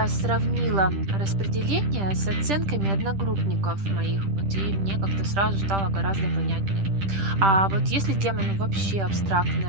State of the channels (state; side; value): late; left; 10 ms